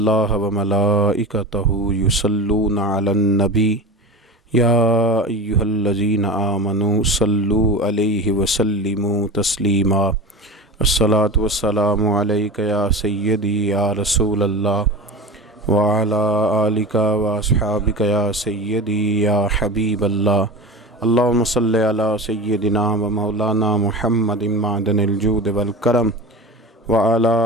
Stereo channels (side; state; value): both; normal; correlation 0.30